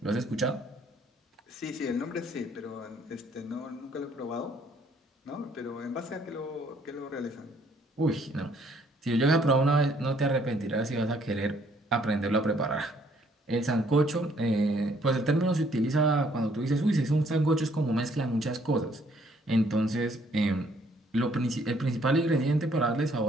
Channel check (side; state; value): both; normal; correlation 0.65